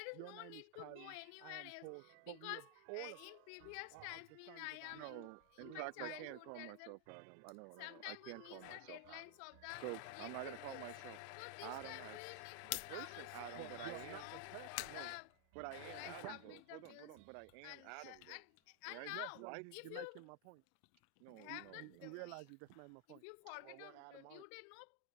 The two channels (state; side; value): different; both; correlation 0.00